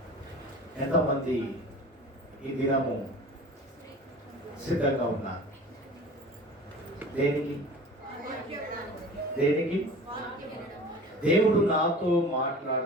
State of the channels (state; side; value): normal; both; correlation 0.40